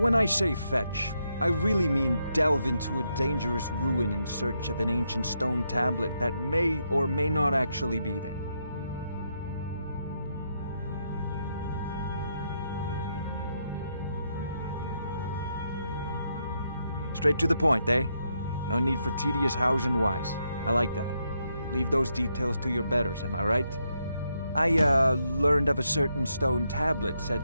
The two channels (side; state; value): both; inverted; correlation -0.79